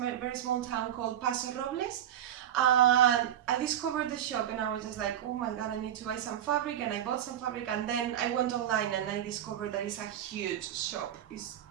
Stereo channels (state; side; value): quieter; left; 10.7 dB